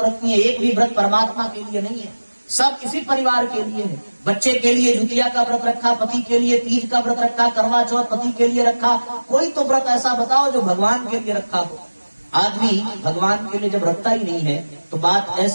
रखती हैं, एक भी व्रत परमात्मा के लिए नहीं है, सब इसी परिवार के लिए है। बच्चे के लिए ज्योतिया का व्रत रखा, पति के लिए तीज का व्रत रखा, करवा चौथ पति के लिए रखा। कोई तो व्रत ऐसा बताओ जो भगवान के लिए रखा हो। आदमी भगवान के लिए जब रखता ही नहीं है तो बात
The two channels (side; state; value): both; inverted; correlation -1.00